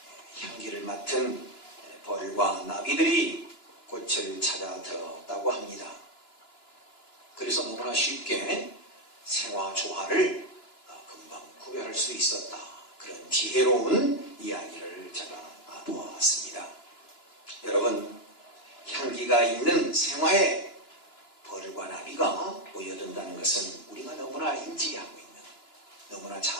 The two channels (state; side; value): late; right; 2.9 ms